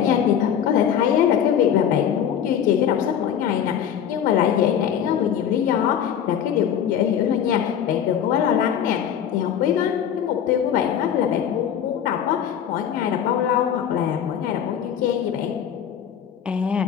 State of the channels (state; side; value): quieter; right; 9.0 dB